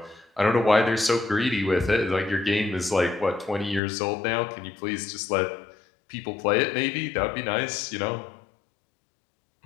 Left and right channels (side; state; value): right; drops out; at 3.8 s